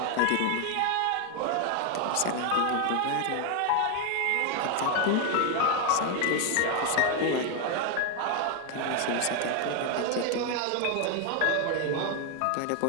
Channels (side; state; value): both; different; correlation 0.01